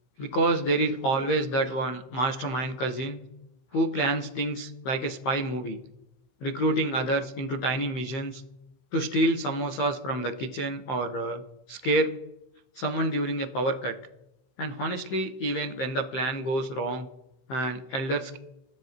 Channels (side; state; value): right; late; 16 ms